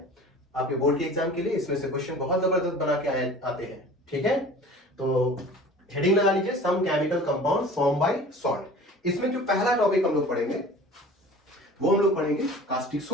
आपके बोर्ड के एग्जाम के लिए। इसमें से क्वेश्चन बहुत जबरदस्त बना के आते हैं। ठीक है, तो हेडिंग लगा लीजिए, some chemical compound form by salt. इसमें जो पहला टॉपिक हम लोग पढ़ेंगे वो हम लोग पढ़ेंगे कास्टिक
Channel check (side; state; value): both; normal; correlation 0.43